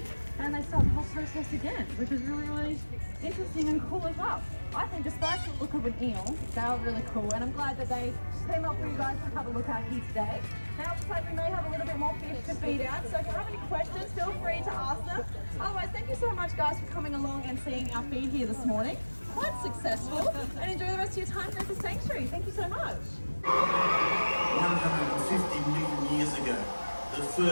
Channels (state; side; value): inverted; both; correlation -1.00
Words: and they start the whole process again, which is really, really interesting and cool as well. I think despite the look of an eel, they are really cool, and I'm glad that they came up for you guys to have a look at here today. Now, it looks like we may have a little bit more fish to feed out, so if you have any questions, feel free to ask them. Otherwise, thank you so much guys for coming along and seeing our feed here this morning. Quite successful, and enjoy the rest of your time here at the sanctuary. Thank you so much. 150 million years ago, the